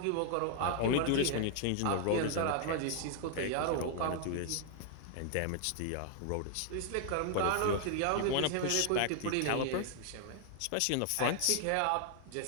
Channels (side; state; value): both; different; correlation 0.00